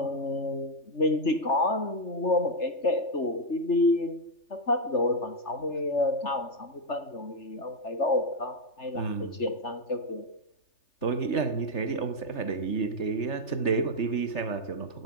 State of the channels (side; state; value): right; late; 3.3 ms